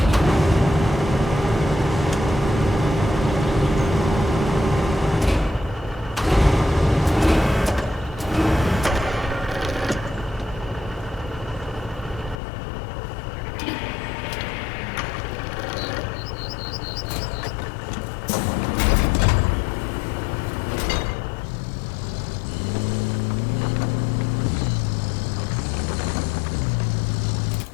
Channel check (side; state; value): right; drops out; at 12.4 s